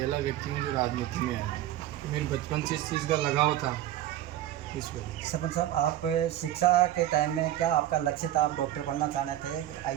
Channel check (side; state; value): left; quieter; 13.1 dB